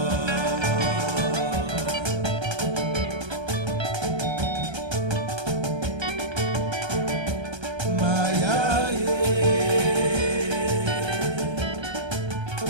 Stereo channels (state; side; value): late; left; 1.3 ms